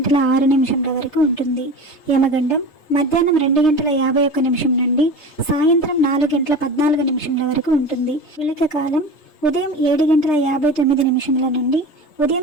వరకు ఉంటుంది. యమగండం మధ్యాహ్నం 2:51 నుండి సాయంత్రం 4:14 వరకు ఉంటుంది. విళక కాలం ఉదయం 7:59 నుండి ఉదయం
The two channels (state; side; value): late; right; 3.3 ms